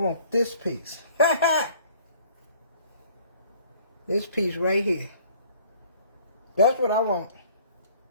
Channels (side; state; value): both; inverted; correlation -0.54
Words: this piece. This piece right here. That's what I want.